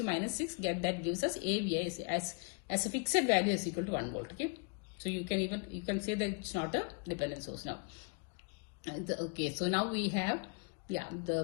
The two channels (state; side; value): quieter; right; 35.7 dB